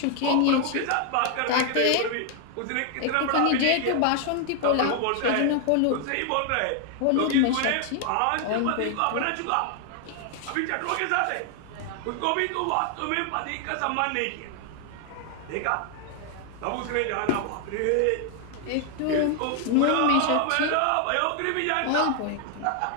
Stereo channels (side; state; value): both; different; correlation 0.00